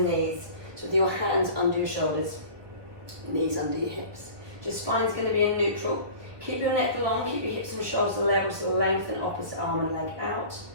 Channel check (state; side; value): late; left; 1.2 ms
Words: knees. So with your hands under your shoulders, knees under your hips. Your spine's going to be in neutral. Keep your neck long, keep your hips and shoulders level, so lengthen opposite arm and leg out.